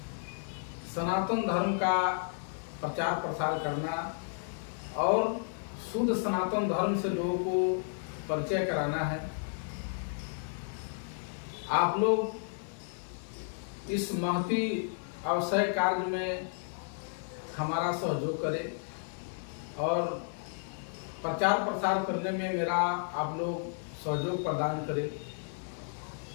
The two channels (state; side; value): silent; right; digital silence